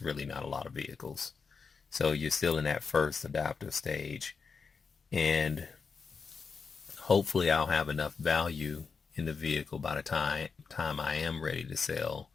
really not a lot of vehicles. So you're still in that first adopter stage, and hopefully I'll have enough value in the vehicle by the time I am ready to sell,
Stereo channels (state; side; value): quieter; right; 5.3 dB